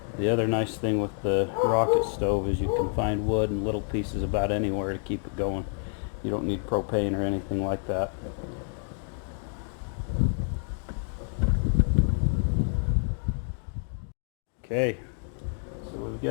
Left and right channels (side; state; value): right; silent; 57 dB below the other